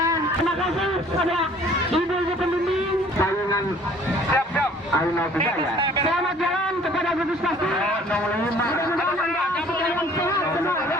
terima kasih kepada ibu-ibu pembimbing saingan. Siap. Ayo bisa ya. Selamat jalan kepada gugus pasti.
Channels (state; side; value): normal; both; correlation 0.54